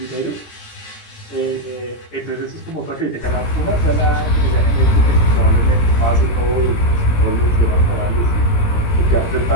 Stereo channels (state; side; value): late; right; 17 ms